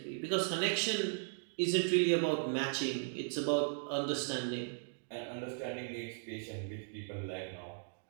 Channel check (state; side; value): silent; left; digital silence